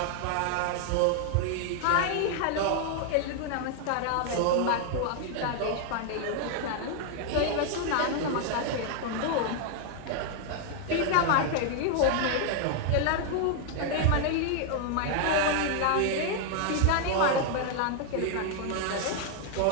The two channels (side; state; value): both; different; correlation 0.00